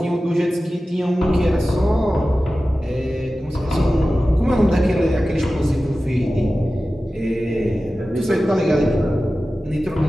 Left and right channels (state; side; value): normal; both; correlation 0.95